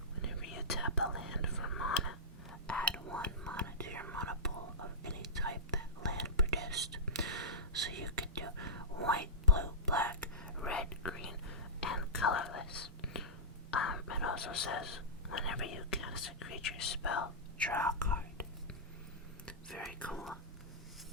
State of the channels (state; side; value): normal; both; correlation -0.16